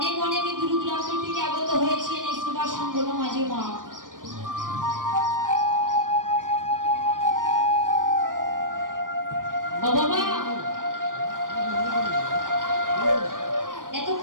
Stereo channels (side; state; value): left; late; 0.90 ms